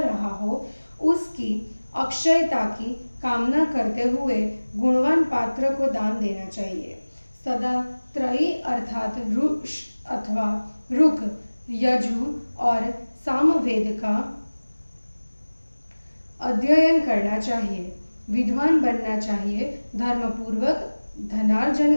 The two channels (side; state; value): both; inverted; correlation -1.00